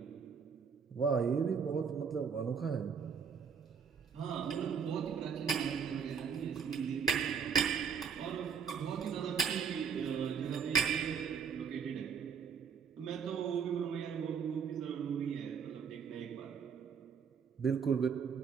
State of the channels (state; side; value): quieter; left; 6.7 dB